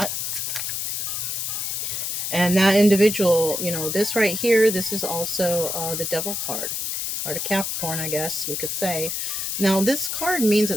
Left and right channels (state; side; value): noise; left; hiss, 2 dB below the sound